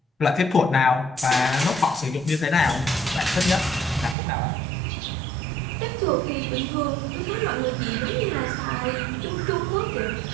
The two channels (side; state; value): left; drops out; at 4.2 s